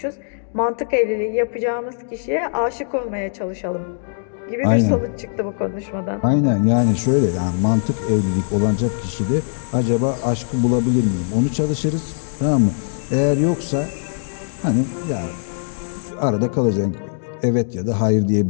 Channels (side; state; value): right; silent; digital silence